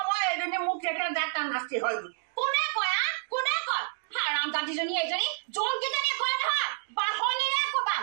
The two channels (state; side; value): silent; left; digital silence